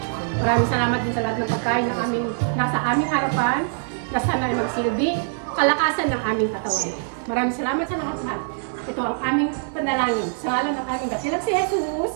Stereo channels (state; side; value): silent; left; digital silence